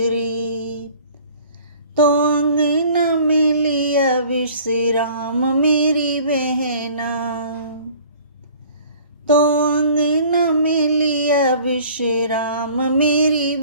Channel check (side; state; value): both; inverted; correlation -0.50